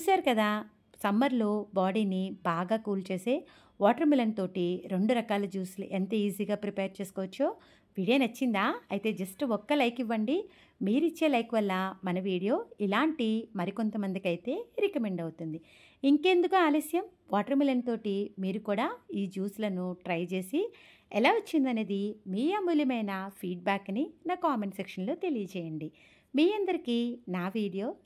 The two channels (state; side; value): identical; both; correlation 1.00